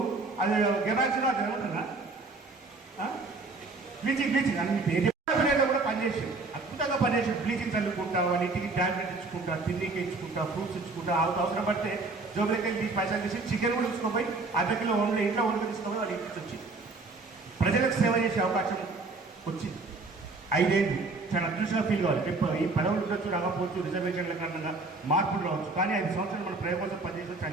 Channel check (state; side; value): quieter; left; 3.7 dB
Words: అది గెబాక్సిన్ అది ఏమంటున్నా బ్లీచింగ్ అన్ని పేరు కూడా పనిచేసాడు, అద్భుతంగా పనిచేసాడు. బ్లీచింగ్ చల్లుకుంటా, వాళ్ళ ఇంటికి ట్యాబ్లెట్ ఇచ్చుకుంటా, తిండికి ఇచ్చుకుంటా, ఫ్రూట్స్ ఇచ్చుకుంటా, అవసరం పడితే జోబులకి వెళ్ళి పైసలు తీసి చికెన్ కూడా తీసుకుపోయి అర్ధకిలో వండి ఇంట్లో వండుకు తీసుకుపోయి వాళ్ళ ఇంటికి వచ్చి ప్రజలకు సేవ చేసే అవకాశం వచ్చింది. 5 ఏళ్ళు చాలా అదృష్టంగా ఫీల్ కావాలి. ఈ పదవులు ఉండొచ్చు, రాకపోవచ్చు, రిజర్వేషన్ల కారణంగా మార్పులు రావచ్చు, కానీ 5 సంవత్సరాలు మన ప్రజల కోసం పనిచేసి